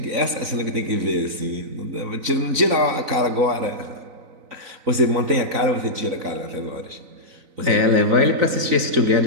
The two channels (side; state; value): left; late; 3.9 ms